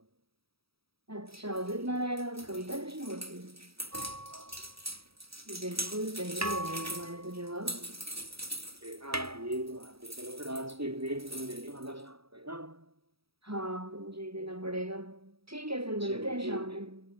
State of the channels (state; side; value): late; left; 0.76 ms